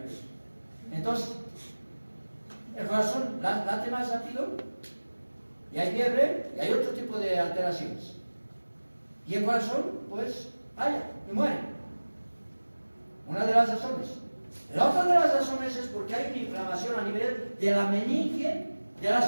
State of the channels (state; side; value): inverted; both; correlation -1.00